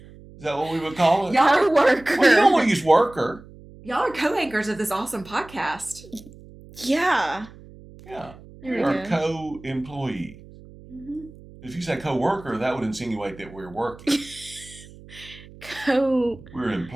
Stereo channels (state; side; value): noise; right; hum, 20 dB below the sound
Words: Is that what we would call it? co-worker. Well, you don't want to use worker. Y'all are co-anchors of this awesome podcast. Yeah. Yeah. There we We're go. a co-employee. If you say co-worker, that would insinuate that we're working. We're